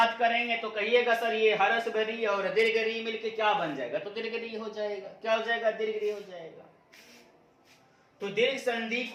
करेंगे तो कहिएगा सर ये हरस री और दीर्घ री मिलके क्या बन जाएगा? तो दीर्घ री हो जाएगा। क्या हो जाएगा? दीर्घ री हो जाएगा। तो दीर्घ संधि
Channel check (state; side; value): identical; both; correlation 1.00